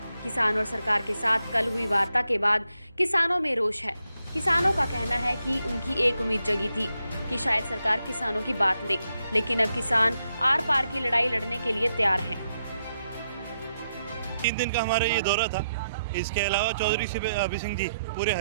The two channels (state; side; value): inverted; both; correlation -0.82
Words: किसान और सरकार के साथ कल हुई वार्ता के बाद किसानों में रोष है। किसानों का कहना है कि उनकी एक उम्मीद जगी थी कि शायद सरकार किसानों की बात ले, लेकिन अब किसान आर पार की लड़ाई लड़ने के लिए तैयार हैं। 3 दिन का हमारा ये दौरा था। इसके अलावा चौधरी अभी सिंह जी पूरे